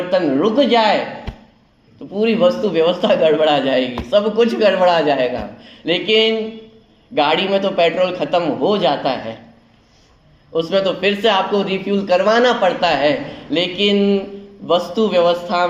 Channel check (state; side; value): identical; both; correlation 1.00